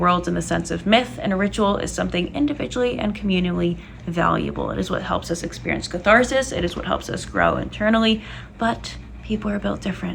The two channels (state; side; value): identical; both; correlation 1.00